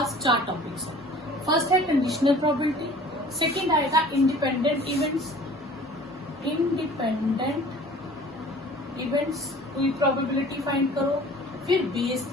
4 टॉपिक्स हैं। फर्स्ट है कंडीशनल प्रोबेबिलिटी, सेकंड आएगा इंडिपेंडेंट इवेंट्स कोई प्रोबेबिलिटी फाइंड करो, फिर बेस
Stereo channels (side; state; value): both; normal; correlation 0.47